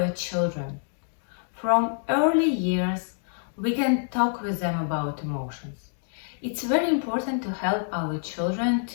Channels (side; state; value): right; silent; digital silence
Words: children. From early years, we can talk with them about emotions. It's very important to help our children